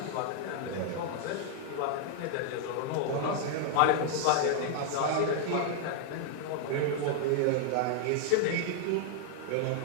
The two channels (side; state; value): both; different; correlation -0.01